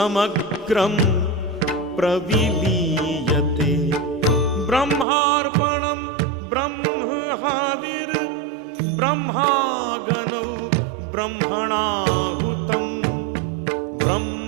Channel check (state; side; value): drops out; left; at 5.1 s